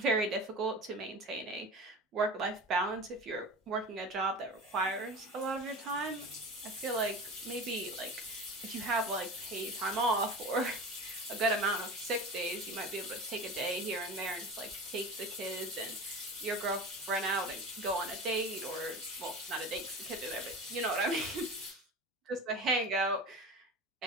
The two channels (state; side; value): normal; both; correlation 0.32